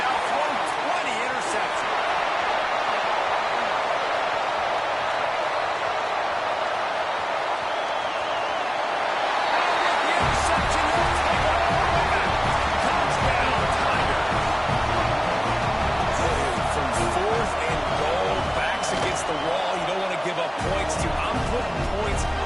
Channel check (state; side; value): identical; both; correlation 1.00